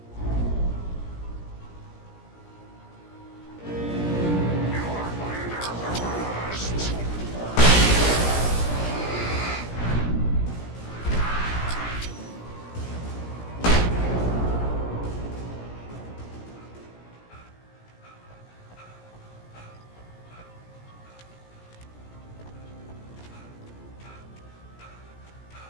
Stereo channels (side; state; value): right; late; 17 ms